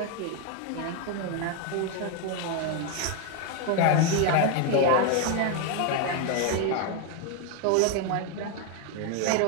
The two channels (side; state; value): both; different; correlation 0.01